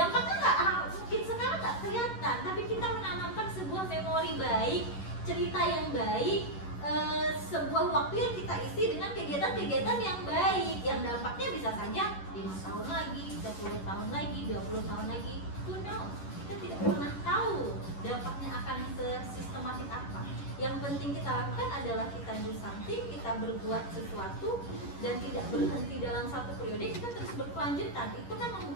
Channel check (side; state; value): right; late; 11 ms